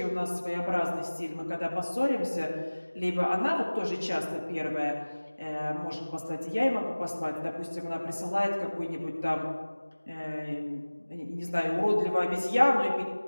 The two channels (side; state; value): both; inverted; correlation -1.00